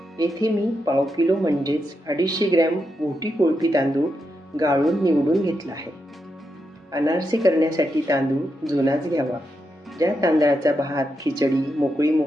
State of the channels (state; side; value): normal; both; correlation 0.85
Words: येथे मी पाव किलो म्हणजेच 250 ग्रॅम मोठी कोळपी तांदूळ गाळून निवडून घेतला आहे. अनारसे करण्यासाठी तांदूळ जुनाच घ्यावा. ज्या तांदळाचा भात खिचडी मोकळी